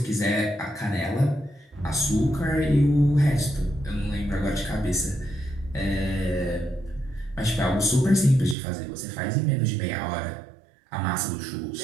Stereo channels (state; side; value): drops out; left; at 8.6 s